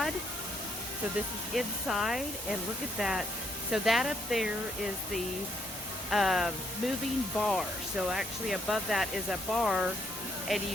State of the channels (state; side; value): normal; both; correlation 0.72